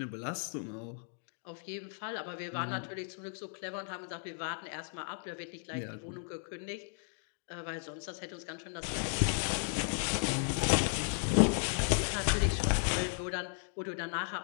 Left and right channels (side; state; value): right; silent; 54 dB below the other